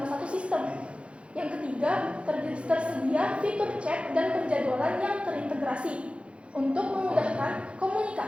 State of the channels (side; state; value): left; late; 0.059 ms